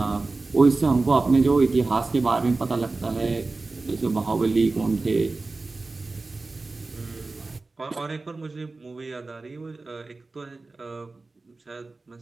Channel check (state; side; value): quieter; left; 3.5 dB